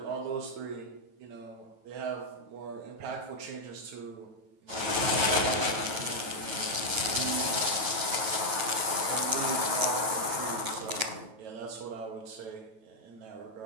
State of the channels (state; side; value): late; left; 9.2 ms